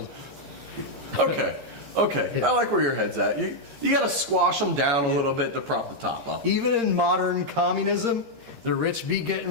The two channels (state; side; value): late; left; 14 ms